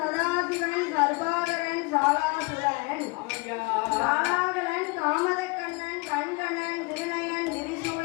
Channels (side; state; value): right; quieter; 27.4 dB